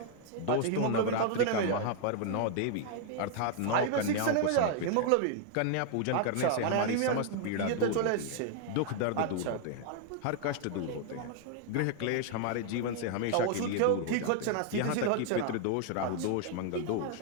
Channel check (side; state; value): both; different; correlation 0.00